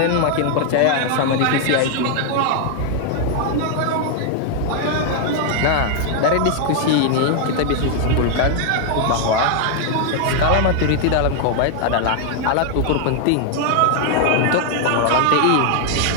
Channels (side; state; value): both; different; correlation 0.00